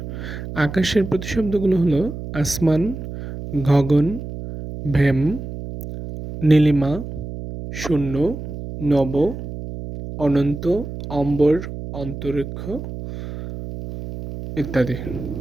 আকাশের প্রতিশব্দগুলো হলো আসমান, গগন, ভ্যাম, নীলিমা, শূন্য, নব, অনন্ত, অম্বর, অন্তরিক্ষ ইত্যাদি।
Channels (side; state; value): right; noise; hum, 9 dB below the sound